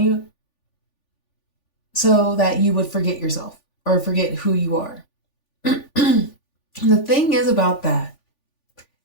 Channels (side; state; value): right; late; 3.5 ms